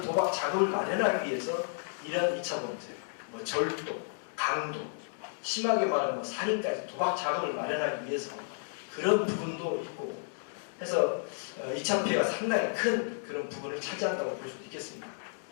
자금을 마련하기 위해서 이런 2차 범죄, 뭐 절도, 강도, 심하게 말하면 뭐 살인까지 도박 자금을 마련하기 위해서 그런 부분도 있고 해서 2차 피해가 상당히 큰 그런 부분을 차지한다고 볼 수도 있겠습니다.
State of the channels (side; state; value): right; silent; digital silence